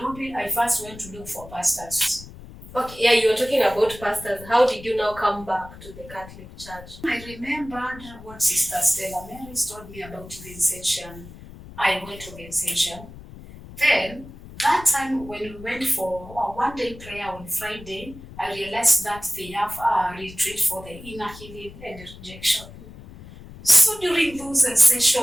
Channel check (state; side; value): noise; left; rumble, 17 dB below the sound